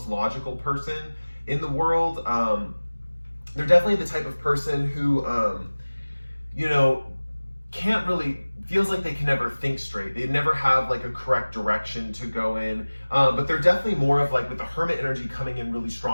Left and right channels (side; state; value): both; inverted; correlation -1.00